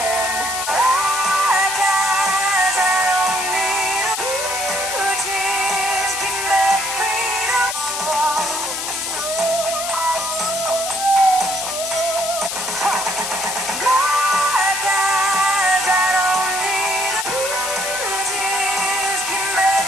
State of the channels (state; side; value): noise; left; hiss, 4 dB below the sound